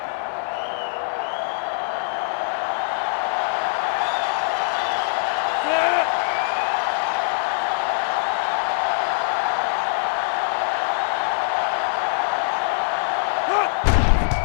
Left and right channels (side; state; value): right; silent; 64 dB below the other